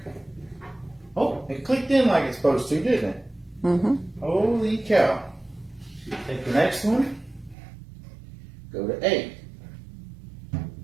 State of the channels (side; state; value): left; drops out; at 7.6 s